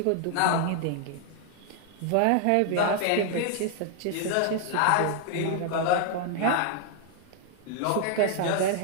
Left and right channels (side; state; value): both; different; correlation 0.00